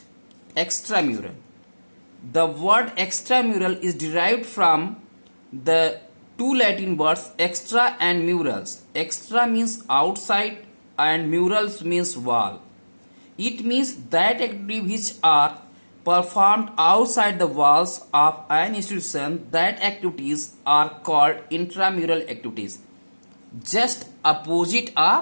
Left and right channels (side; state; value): both; inverted; correlation -1.00